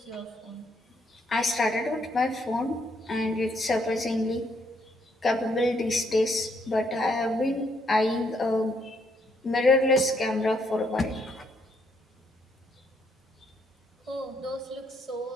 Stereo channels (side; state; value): both; normal; correlation 0.73